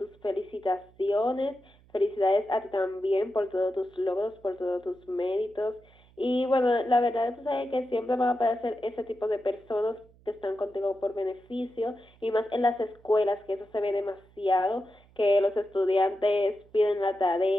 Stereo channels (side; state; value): right; noise; hum, 28 dB below the sound